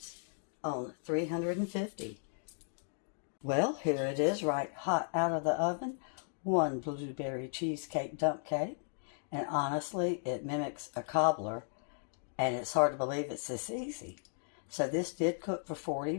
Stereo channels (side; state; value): right; silent; digital silence